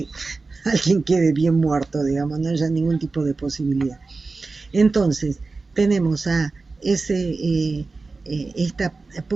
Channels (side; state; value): left; quieter; 3.9 dB